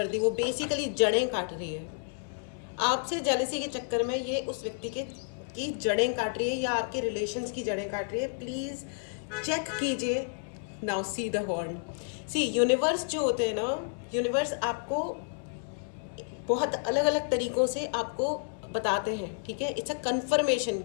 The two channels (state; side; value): silent; right; digital silence